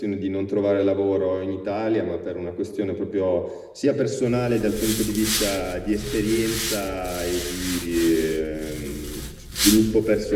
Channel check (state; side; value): identical; both; correlation 1.00